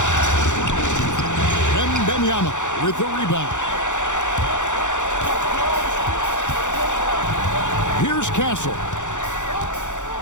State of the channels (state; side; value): late; right; 0.85 ms